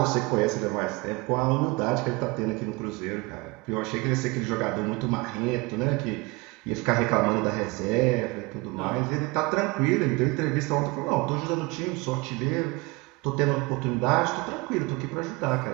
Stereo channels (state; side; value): quieter; left; 24.5 dB